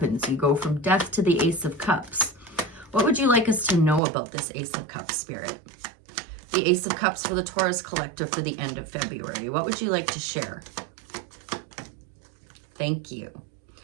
You go from Death to the Ace of Cups. What would you like us to know about this Ace of Cups, Spirit? The Ace of Cups for the Taurus Collective for the end of February. What would you like to share? Thank you.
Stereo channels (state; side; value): drops out; left; at 4.0 s